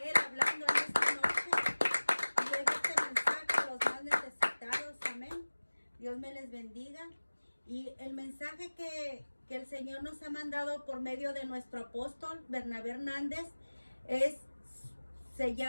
Él hablando en esta noche y lleve este mensaje a los más necesitados. Amén. Dios me les bendiga. Y el mensaje que el Señor nos ha mandado por medio de nuestro apóstol Bernabé Hernández se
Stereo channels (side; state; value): both; inverted; correlation -1.00